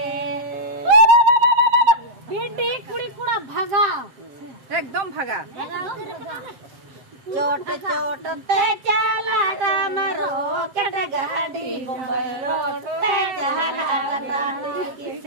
बेटी कुड़ी कुड़ा भागा एकदम भागा चोट चोट ते चला डमरो कट गाड़ी बम्बई रोड ते चला डटाटी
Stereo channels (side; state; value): left; late; 7.6 ms